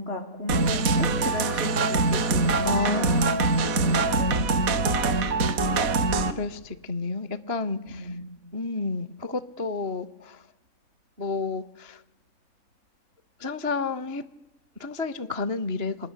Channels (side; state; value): left; late; 4.1 ms